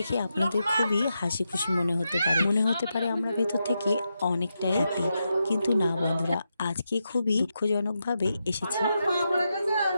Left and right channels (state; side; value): inverted; both; correlation -0.86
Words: আপনাদের খুবই হাসি খুশি মনে হতে পারে আমরা ভেতর থেকে অনেকটাই হ্যাপি, কিন্তু না বন্ধুরা, আজকে খুবই দুঃখজনকভাবে এসেছি।